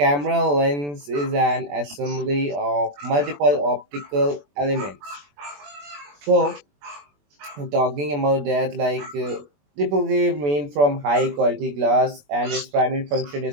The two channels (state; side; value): late; left; 21 ms